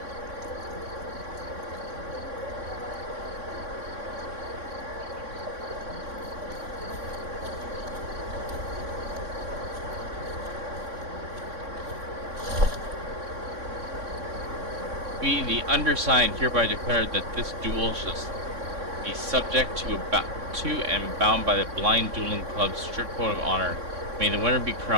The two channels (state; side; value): late; left; 3.6 ms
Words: We, the undersigned, hereby declare that this duel shall be subject to and bound by the Blind Dueling Club's strict code of honor. May the winner be